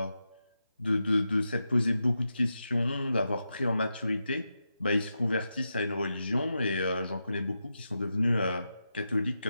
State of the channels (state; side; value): inverted; both; correlation -0.88